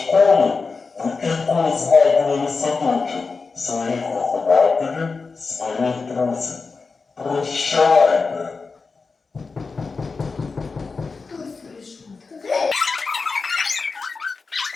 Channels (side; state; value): right; quieter; 4.4 dB